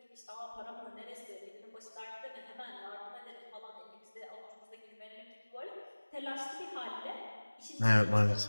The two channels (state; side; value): inverted; both; correlation -1.00